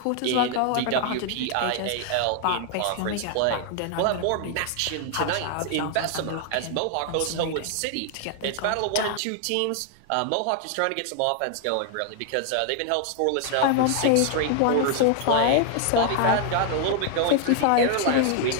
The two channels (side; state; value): both; different; correlation 0.00